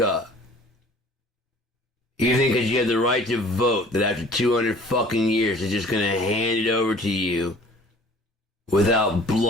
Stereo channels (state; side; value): normal; both; correlation 0.49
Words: You think because you have the right to vote that after 200 fucking years they're just gonna hand it over to you without